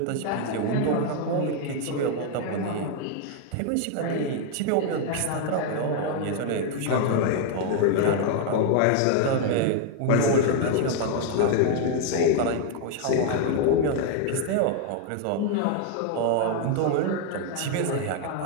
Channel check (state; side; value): different; both; correlation 0.00